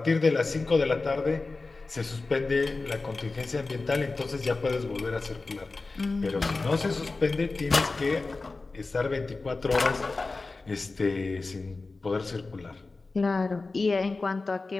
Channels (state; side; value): quieter; right; 3.6 dB